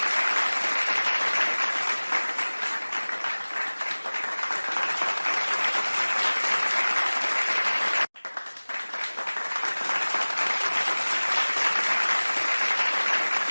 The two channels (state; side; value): inverted; both; correlation -1.00